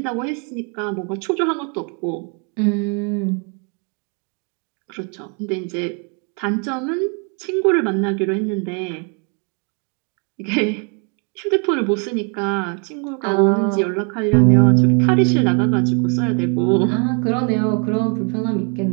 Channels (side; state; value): left; quieter; 36.7 dB